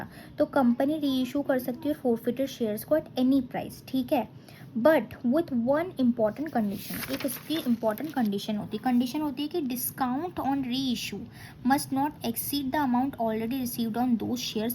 तो कंपनी री इशू कर सकती है फोरफिटेड शेयर्स को एट एनी प्राइस, ठीक है. But with one important condition, एक इसकी इम्पॉर्टेंट कंडीशन होती है कि डिस्काउंट ऑन री issue must not exceed the amount already received on those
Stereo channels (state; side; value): identical; both; correlation 1.00